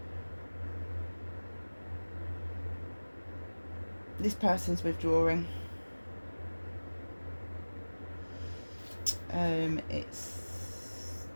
This person's withdrawing. It's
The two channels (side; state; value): both; inverted; correlation -1.00